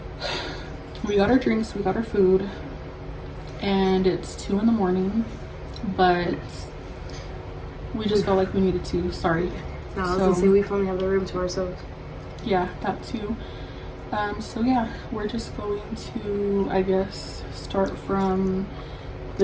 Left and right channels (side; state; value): both; identical; correlation 1.00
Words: we got our drinks, we got our food, and it's 2 in, but we just felt like we needed to. Sorry. No, I was gonna say we finally have the room to ourselves. Yeah, that too. So yeah, we're just going to, I guess, start from